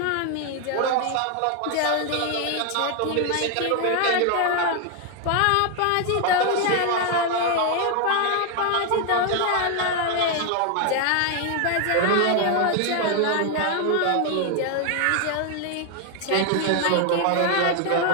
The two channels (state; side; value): different; both; correlation 0.00